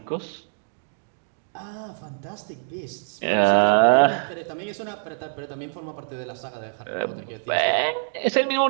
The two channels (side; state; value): left; silent; digital silence